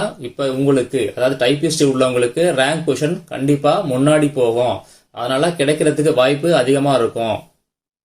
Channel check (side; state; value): both; identical; correlation 1.00